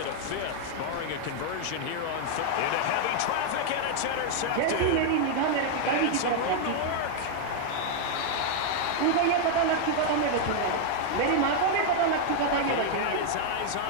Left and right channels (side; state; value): both; different; correlation 0.00